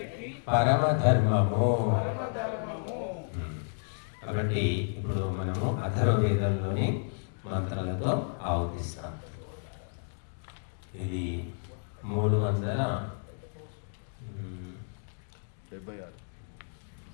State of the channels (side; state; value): right; silent; digital silence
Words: పరమధర్మము. కాబట్టి ఇప్పుడు మనము అథర్వవేదంలోని మంత్రాలతో ఆవతిస్తాం. ఇది